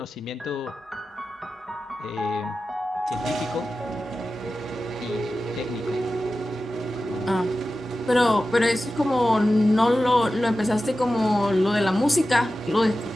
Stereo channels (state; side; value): normal; both; correlation 0.93